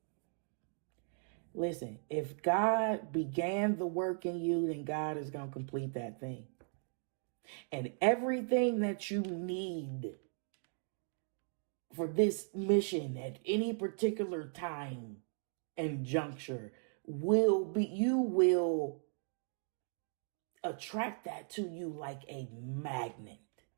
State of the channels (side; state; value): left; silent; 53 dB below the other